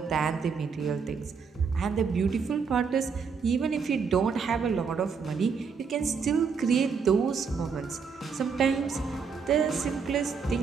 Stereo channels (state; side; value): quieter; left; 5.6 dB